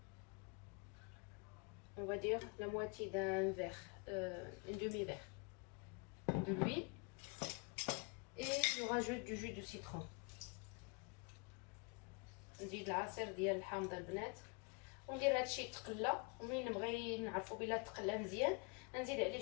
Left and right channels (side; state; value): right; quieter; 32.9 dB